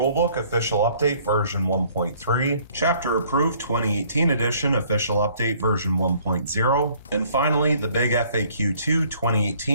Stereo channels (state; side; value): inverted; both; correlation -0.59